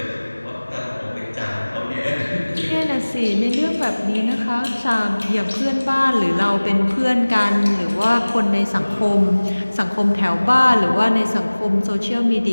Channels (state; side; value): inverted; both; correlation -1.00